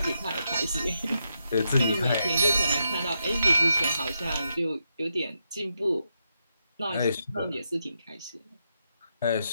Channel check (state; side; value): inverted; both; correlation -0.83